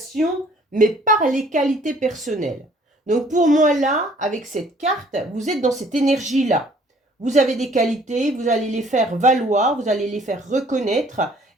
mais par les qualités personnelles. Donc pour moi, là, avec cette carte, vous êtes dans cette énergie-là. Vous avez des qualités, vous allez les faire valoir, vous allez les faire reconnaître,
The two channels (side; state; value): both; normal; correlation 0.57